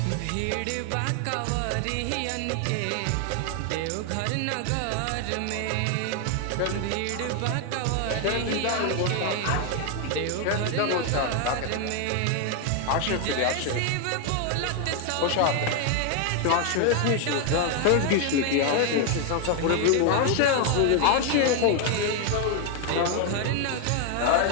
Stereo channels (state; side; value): different; both; correlation 0.01